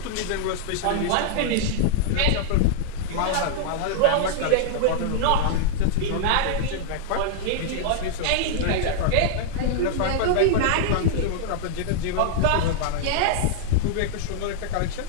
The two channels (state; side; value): different; both; correlation -0.01